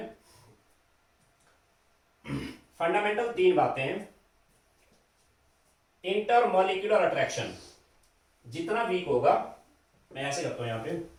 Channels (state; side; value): identical; both; correlation 1.00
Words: फंडामेंटल 3 बातें हैं। इंटर मॉलिक्यूलर अट्रैक्शन जितना वीक होगा, मैं ऐसे करता हूं यहां पे,